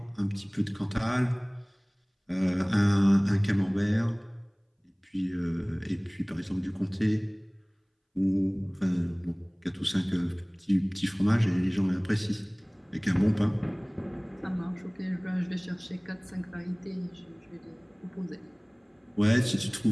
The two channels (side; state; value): both; identical; correlation 1.00